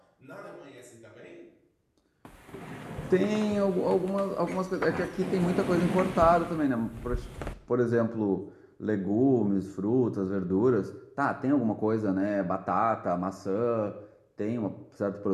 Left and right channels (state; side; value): identical; both; correlation 1.00